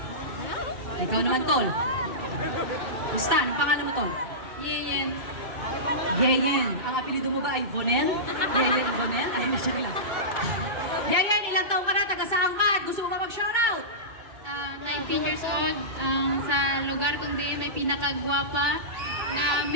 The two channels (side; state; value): left; late; 2.2 ms